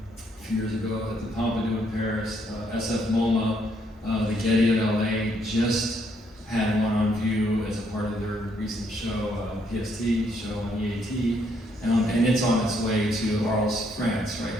a few years ago at the Pompidou in Paris. SF MoMA, the Getty at LA just had one on view as a part of their recent show, PST show on E.A.T. And it's on its way to Arles, France right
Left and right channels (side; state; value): both; normal; correlation 0.72